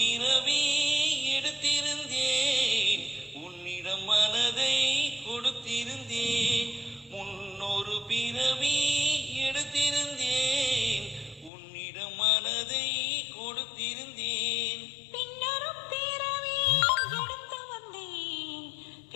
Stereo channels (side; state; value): right; drops out; at 11.5 s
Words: எடுத்திருந்தேன், உன்னிடம் மனதை கொடுத்திருந்தேன். முன்னொரு பிறவி எடுத்திருந்தேன், உன்னிடம் மனதை கொடுத்திருந்தேன். பின்னொரு பிறவி எடுத்து வந்தேன்,